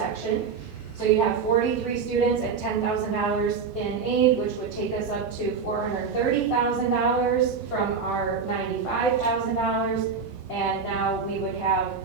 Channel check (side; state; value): left; quieter; 5.6 dB